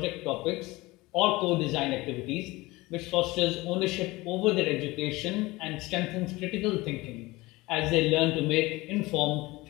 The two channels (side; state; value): right; quieter; 21.0 dB